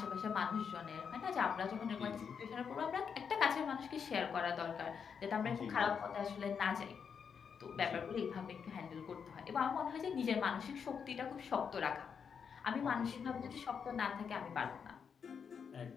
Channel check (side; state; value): right; quieter; 6.7 dB